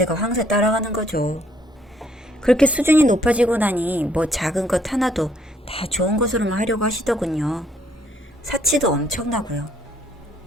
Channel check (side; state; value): both; normal; correlation 0.66